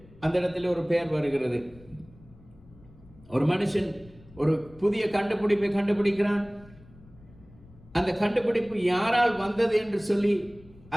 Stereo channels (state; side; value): noise; left; rumble, 24 dB below the sound